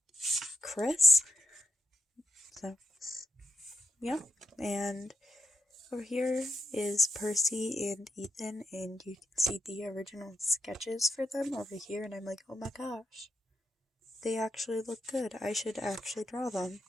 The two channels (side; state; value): both; normal; correlation 0.83